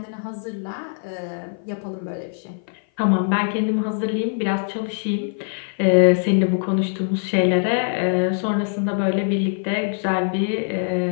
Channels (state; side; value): silent; right; 56 dB below the other